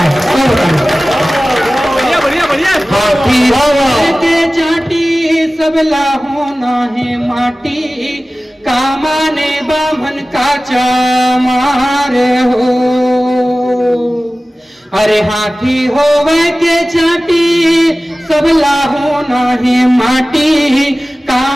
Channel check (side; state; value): both; normal; correlation 0.97